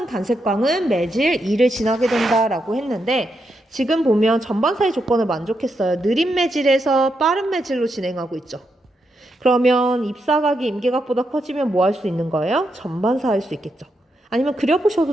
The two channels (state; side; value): normal; both; correlation 0.83